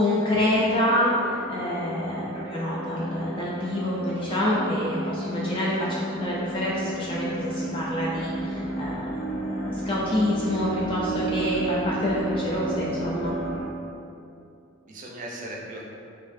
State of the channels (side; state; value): both; normal; correlation 0.43